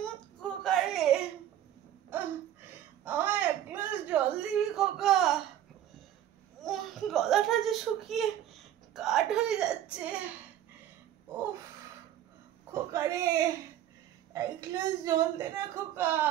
খোকা রে, আমায় এক গ্লাস জল দিবি খোকা? গলাটা যে শুকিয়ে কাঠ হয়ে যাচ্ছে। উফ খোকা রে, এক গ্লাস জল দে না খোকা,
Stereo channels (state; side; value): quieter; left; 11.6 dB